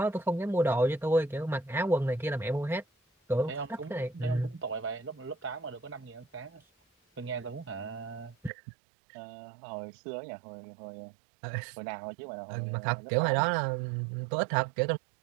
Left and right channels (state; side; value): drops out; left; at 8.5 s